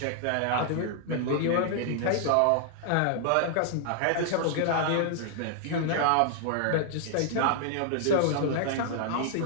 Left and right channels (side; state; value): both; different; correlation -0.01